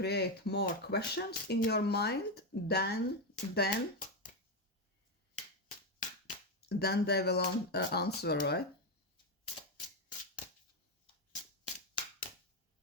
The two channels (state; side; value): normal; both; correlation 0.08